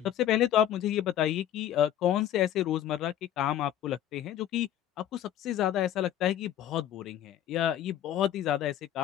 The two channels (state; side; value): quieter; right; 11.4 dB